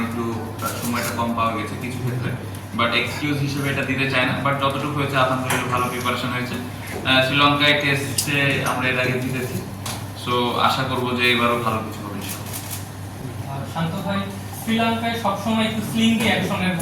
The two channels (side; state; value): both; identical; correlation 1.00